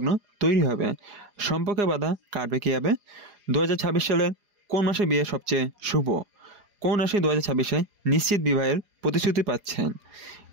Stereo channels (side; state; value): left; late; 4.9 ms